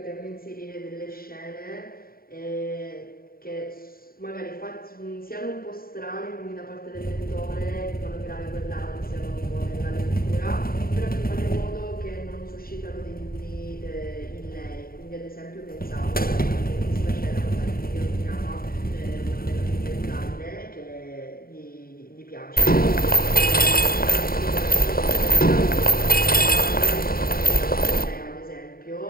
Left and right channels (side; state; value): right; late; 0.43 ms